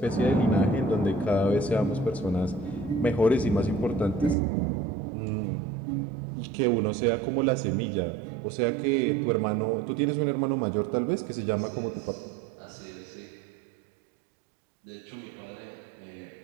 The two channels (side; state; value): left; drops out; at 4.4 s